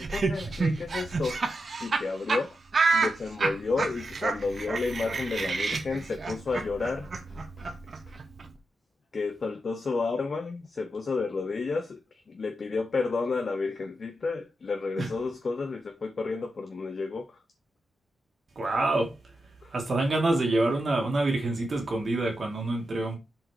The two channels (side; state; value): both; normal; correlation 0.87